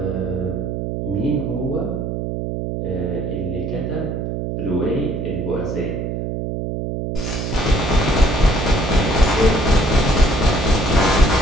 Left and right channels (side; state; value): right; noise; hum, 3 dB below the sound